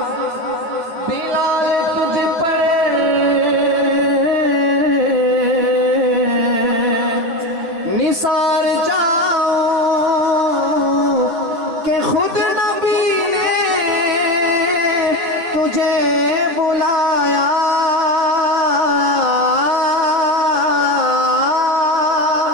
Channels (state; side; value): late; left; 9.3 ms